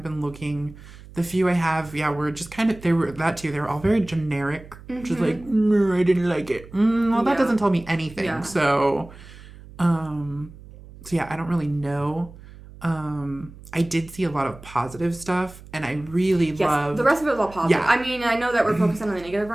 been looking. The few I have, were just kind of, they were all very generic. Just like, I didn't like it. Well, that doesn't tell me anything. Yeah. So, I don't really know. I did see a lot of positive stuff, and I really loved... the rest of it was all positive. Yeah. I mean, I know that we're focusing on the negative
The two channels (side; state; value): right; noise; hum, 19 dB below the sound